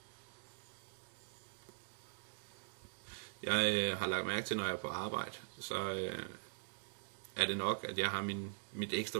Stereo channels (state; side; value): silent; left; digital silence